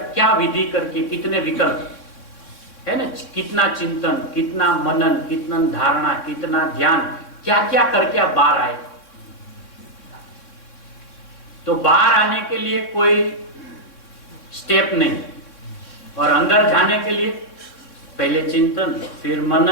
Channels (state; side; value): late; right; 3.6 ms